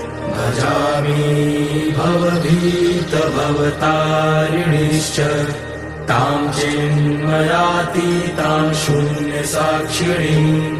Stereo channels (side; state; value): both; identical; correlation 1.00